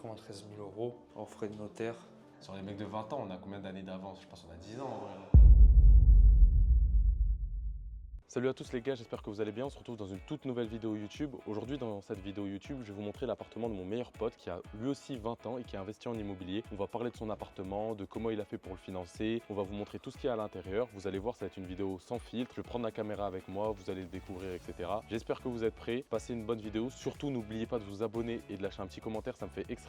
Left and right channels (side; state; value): both; identical; correlation 1.00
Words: 000 € en frais de notaire. Sur les mecs de 20 ans, on a combien d'années d'avance? Je pense qu'on a 10 ans en vrai. Salut à tous les gars, j'espère que vous allez bien. On se retrouve dans une toute nouvelle vidéo YouTube. Aujourd'hui, dans cette vidéo YouTube, je vais vous montrer l'appartement de mon meilleur pote qui a lui aussi 20 ans et qui a investi en immobilier. On va parler de son appartement, de comment il a fait pour le financer. On va vous montrer tout ce qu'il y a à l'intérieur. Vous allez voir, ça va être une vidéo sans filtre. Je vais prendre la caméra avec moi, vous allez le découvrir, etc. J'espère que vous êtes prêts. Passez une bonne vidéo. Surtout, n'oubliez pas de vous abonner et de lâcher un petit commentaire. Ça me fait